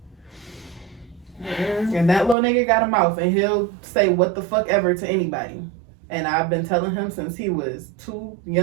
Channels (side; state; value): left; drops out; at 2.4 s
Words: And that little nigga got a mouth, and he'll say what the fuck ever to anybody. And I've been telling him since he was too